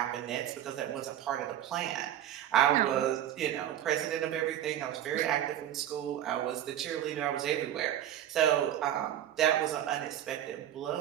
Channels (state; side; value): quieter; left; 11.4 dB